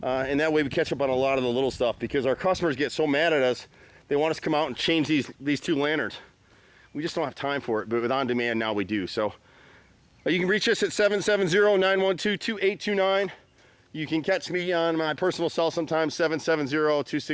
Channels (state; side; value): identical; both; correlation 1.00